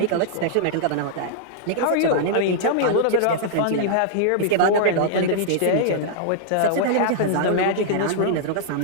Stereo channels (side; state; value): both; different; correlation -0.01